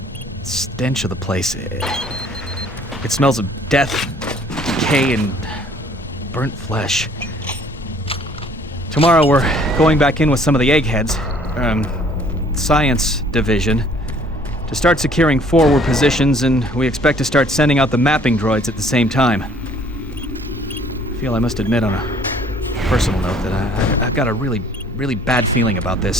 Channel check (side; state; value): both; normal; correlation 0.57